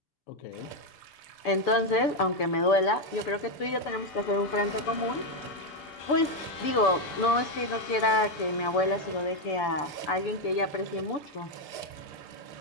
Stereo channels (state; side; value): late; right; 6.9 ms